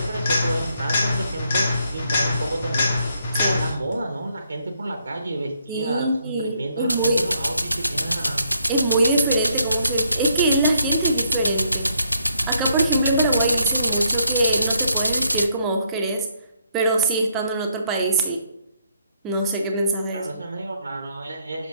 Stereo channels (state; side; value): inverted; both; correlation -0.72